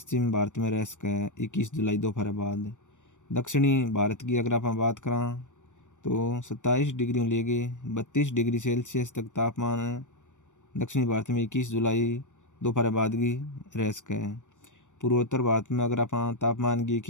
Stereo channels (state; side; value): late; right; 0.85 ms